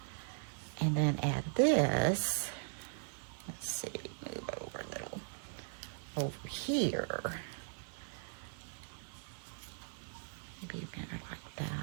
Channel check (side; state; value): left; silent; 52 dB below the other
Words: And then add this. Let's see, move over a little. Over here. Maybe better like